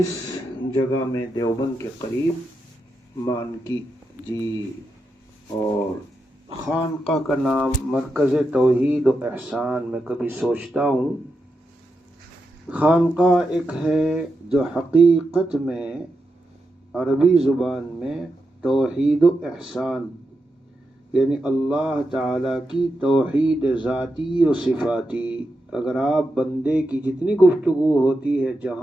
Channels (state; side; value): normal; both; correlation 0.87